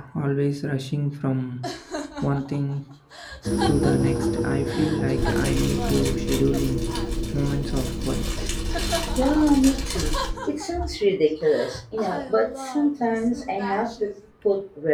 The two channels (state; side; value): identical; both; correlation 1.00